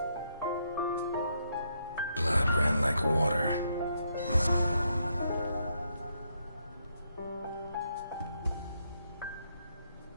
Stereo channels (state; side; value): inverted; both; correlation -0.77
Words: Blood ran like water.